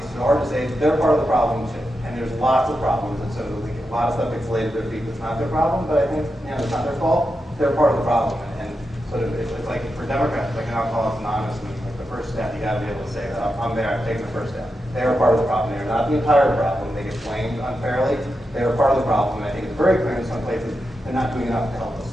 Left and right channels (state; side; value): normal; both; correlation 0.88